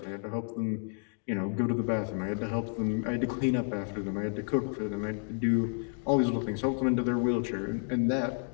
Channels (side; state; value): right; silent; 57 dB below the other